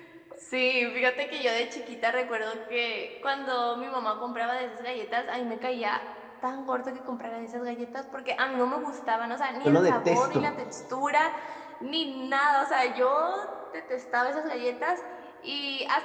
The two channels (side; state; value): both; identical; correlation 1.00